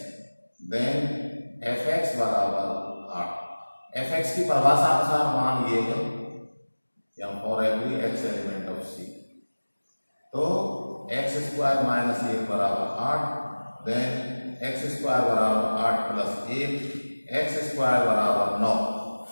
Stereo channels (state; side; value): inverted; both; correlation -1.00